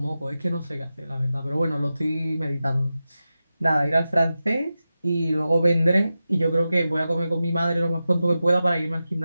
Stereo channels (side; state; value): both; inverted; correlation -0.92